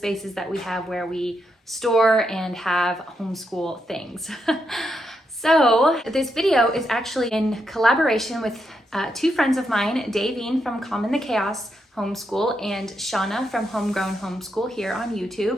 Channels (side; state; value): both; normal; correlation 0.82